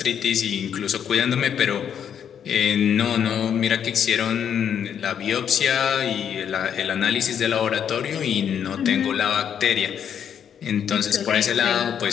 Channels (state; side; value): quieter; right; 8.5 dB